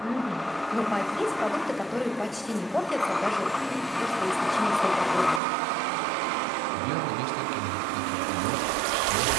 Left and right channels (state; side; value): drops out; left; at 5.4 s